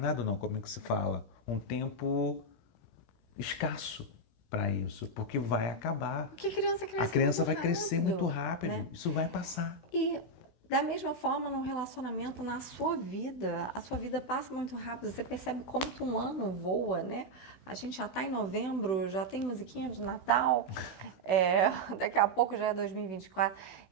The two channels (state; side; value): late; right; 16 ms